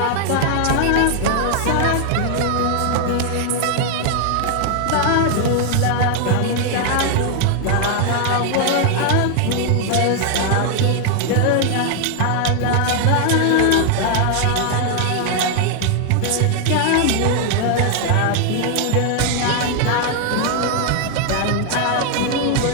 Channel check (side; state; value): both; different; correlation 0.00